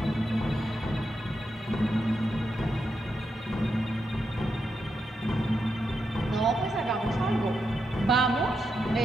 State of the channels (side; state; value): both; normal; correlation 0.84